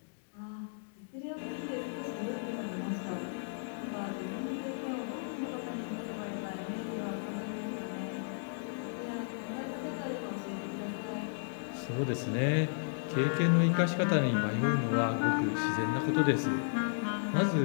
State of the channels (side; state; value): right; silent; digital silence